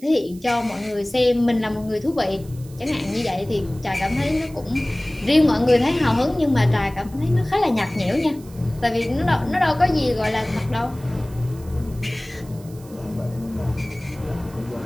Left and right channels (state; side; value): noise; right; hiss, 23 dB below the sound